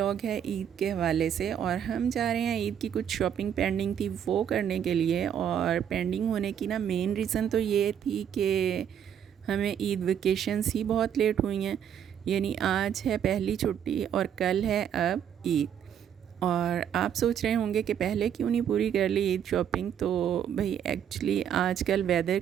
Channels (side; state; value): left; quieter; 9.0 dB